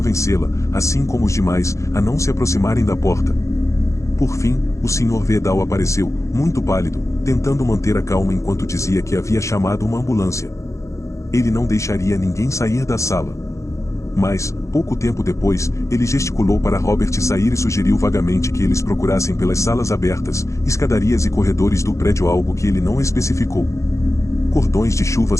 assim como os demais, a não se aproximarem da porta. Por fim, o Sr. Vedal apareceu, muito pálido, tentando manter a calma enquanto dizia que havia chamado uma ambulância. Ele não deixaria ninguém sair da sala. Mas, pouco tempo depois, ele gesticulou para Robert sair e sugeriu vagamente que eles procurassem pelas salas abertas, escadarias e corredores do prédio, algo que ele não especificou. Cordões de chuva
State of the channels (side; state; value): right; late; 0.15 ms